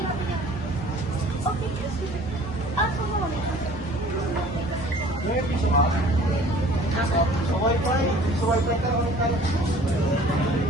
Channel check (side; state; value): both; normal; correlation 0.50